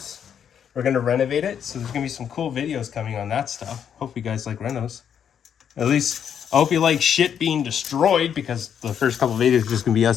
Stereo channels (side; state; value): right; quieter; 8.4 dB